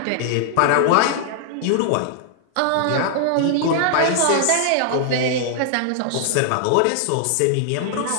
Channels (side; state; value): both; different; correlation -0.01